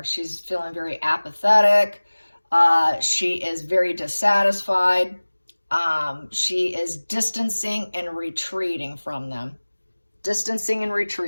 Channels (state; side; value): inverted; both; correlation -1.00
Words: She's feeling very apathetic. She is very dissatisfied. She is distancing and retreating from them. Distancing and